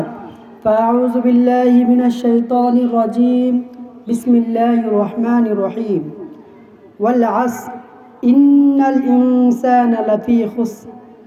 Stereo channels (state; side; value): identical; both; correlation 1.00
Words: فأعوذ بالله من الشيطان الرجيم. بسم الله الرحمن الرحيم. والعصر إن الإنسان لفي خسر